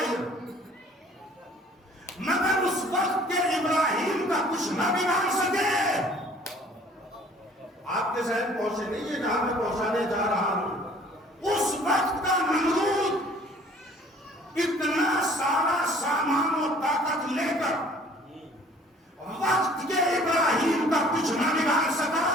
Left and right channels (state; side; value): normal; both; correlation 0.54